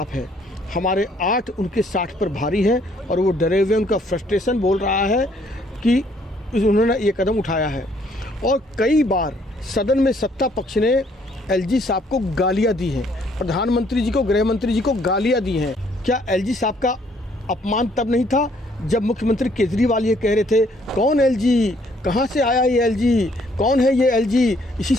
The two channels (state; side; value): normal; both; correlation 0.65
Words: है, हमारे 8 उनके 60 पर भारी हैं और वो डरे हुए, उनका फ्रस्ट्रेशन बोल रहा है कि उन्होंने ये कदम उठाया है। और कई बार सदन में सत्ता पक्ष ने एलजी साहब को गालियां दी हैं, प्रधानमंत्री जी को, गृह मंत्री जी को गालियां दी हैं। क्या एलजी साहब का अपमान तब नहीं था जब मुख्यमंत्री केजरीवाल ये कह रहे थे, कौन एलजी, कहाँ से आया ये एलजी, कौन है ये एलजी, इसी